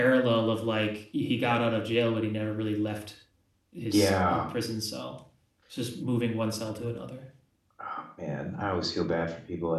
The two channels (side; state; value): both; identical; correlation 1.00